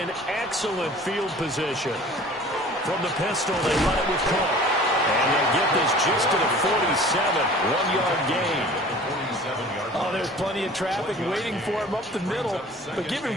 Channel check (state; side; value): normal; both; correlation 0.45